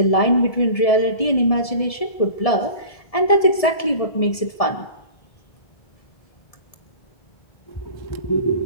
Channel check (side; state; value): right; late; 1.7 ms